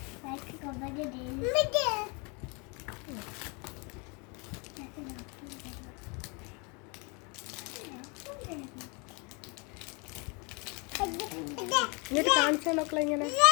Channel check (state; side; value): quieter; right; 31.6 dB